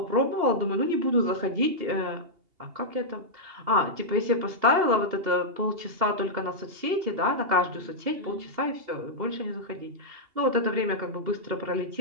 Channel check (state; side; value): late; left; 2.8 ms